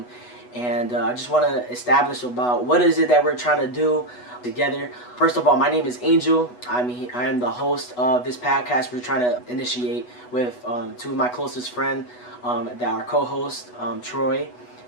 And I just want to establish about what is it that we're trying to do together. First of all, my name is Angel. I am the host of this podcast we're trying to initiate with two of my closest friends that are co-hosts, Troy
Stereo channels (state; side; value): late; right; 8.1 ms